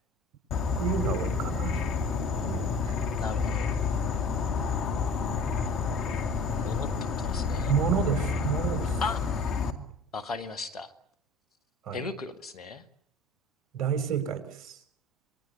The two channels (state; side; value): normal; both; correlation 0.42